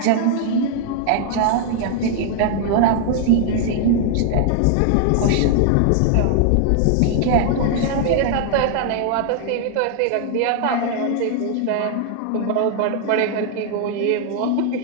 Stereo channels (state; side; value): different; both; correlation 0.00